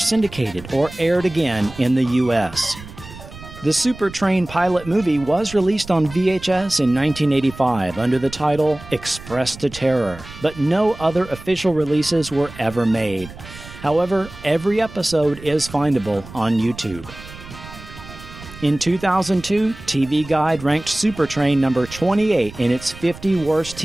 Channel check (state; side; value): noise; right; rumble, 16 dB below the sound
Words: or aired again in the U.S. The Supertrain pilot movie was released on VHS in 1985 under the title Express to Terror, but no other official releases were ever made. However, every episode is findable on YouTube. In 2002, TV Guide ranked Supertrain number 28 in its 50 worst